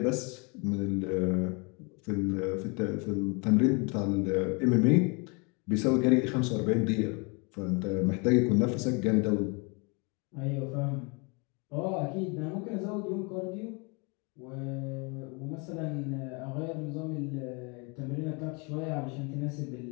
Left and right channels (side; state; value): right; quieter; 31.6 dB